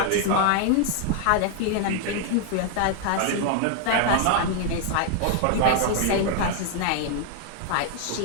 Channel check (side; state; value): both; different; correlation 0.00